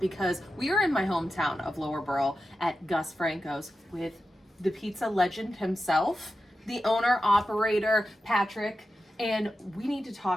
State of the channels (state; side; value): normal; both; correlation 0.91